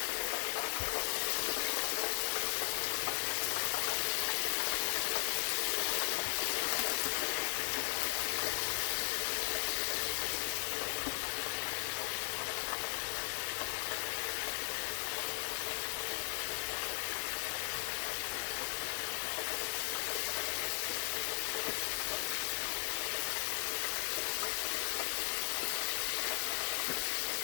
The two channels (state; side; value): silent; right; digital silence